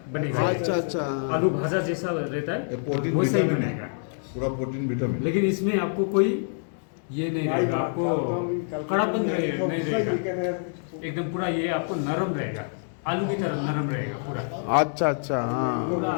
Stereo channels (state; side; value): silent; right; digital silence